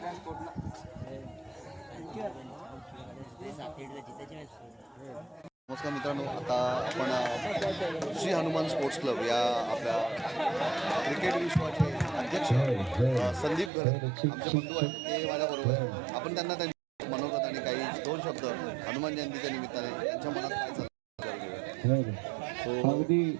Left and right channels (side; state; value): left; drops out; at 13.7 s